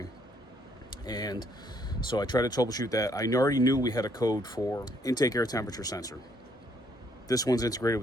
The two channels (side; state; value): both; normal; correlation 0.68